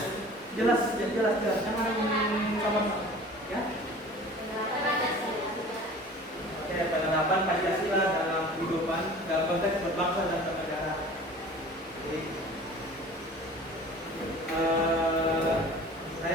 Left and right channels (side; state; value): both; normal; correlation 0.43